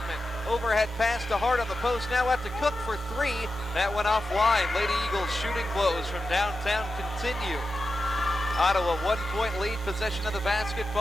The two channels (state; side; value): normal; both; correlation 0.90